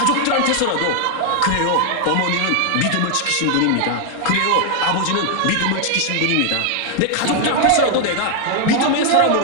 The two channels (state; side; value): different; both; correlation 0.00